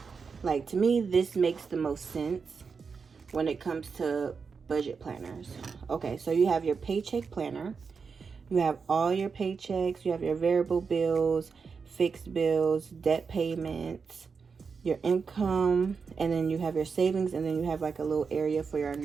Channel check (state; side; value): quieter; left; 5.4 dB